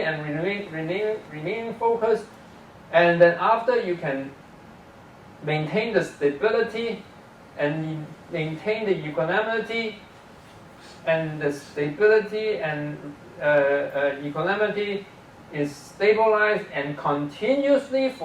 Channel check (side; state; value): both; identical; correlation 1.00